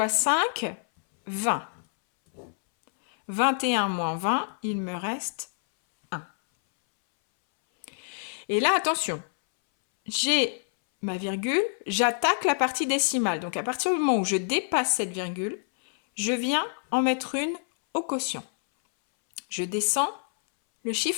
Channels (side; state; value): right; silent; 60 dB below the other